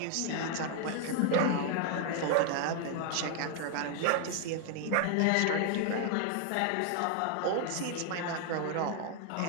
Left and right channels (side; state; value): both; different; correlation 0.00